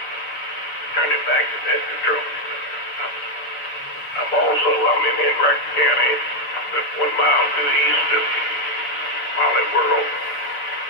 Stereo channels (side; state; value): right; late; 6.9 ms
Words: turn it back to that control. I'm in Enright County, just 1 mile to the east of Molly World,